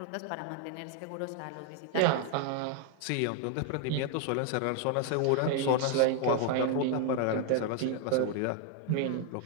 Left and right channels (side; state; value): both; different; correlation 0.00